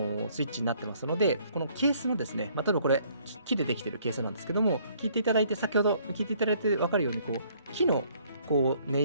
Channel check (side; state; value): both; inverted; correlation -0.63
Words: チになってますので、このケースもですね、例えばこれ木でできてるケースなんですけども、先ほど聞いていただいて分かるように木の音